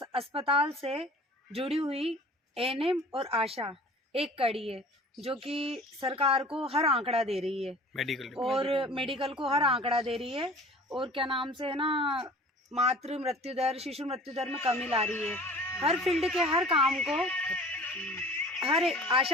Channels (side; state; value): both; normal; correlation 0.45